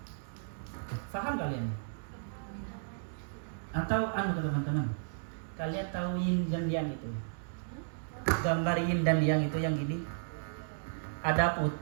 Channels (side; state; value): left; silent; digital silence